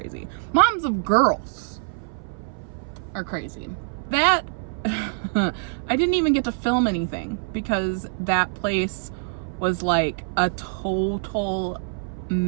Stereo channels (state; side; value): silent; left; 57 dB below the other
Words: Moms of girls are crazy. That, I didn't even get to film anything because that place was like a total